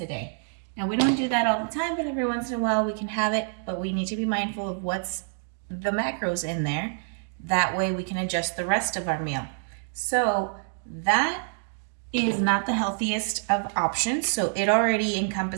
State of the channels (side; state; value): left; silent; digital silence